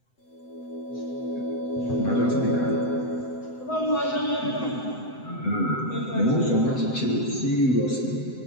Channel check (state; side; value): late; right; 7.8 ms